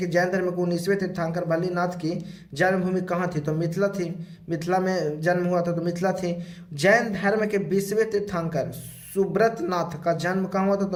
जैन धर्म के 19वें तीर्थंकर मल्लीनाथ की जन्मभूमि कहाँ थी? तो मिथिला थी। मिथिला में जन्म हुआ था तो मिथिला थी। जैन धर्म के 20वें तीर्थंकर सुब्रतनाथ का जन्म कहाँ हुआ था?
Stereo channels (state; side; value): identical; both; correlation 1.00